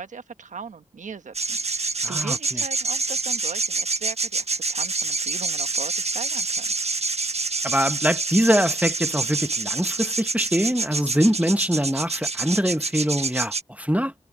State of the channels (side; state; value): both; normal; correlation 0.70